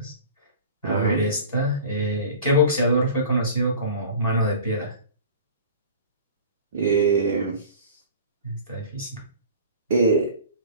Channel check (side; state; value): both; inverted; correlation -0.40